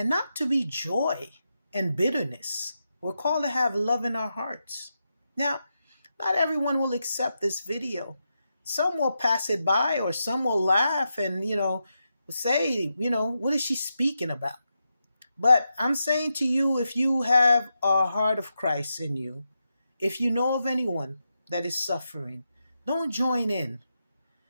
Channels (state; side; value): inverted; both; correlation -0.87